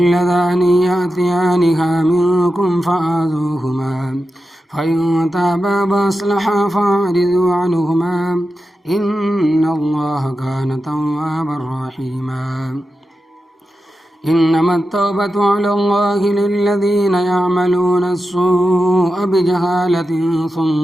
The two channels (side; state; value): both; normal; correlation 0.91